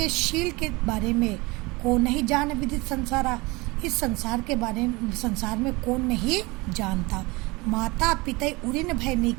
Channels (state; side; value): quieter; left; 24.1 dB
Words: शील के बारे में कौन नहीं जान विदित संसारा। इस संसार के बारे में संसार में कौन नहीं जानता। माता पिता उऋण भय